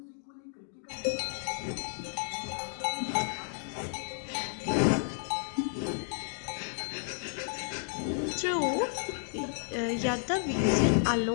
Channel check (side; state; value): right; silent; digital silence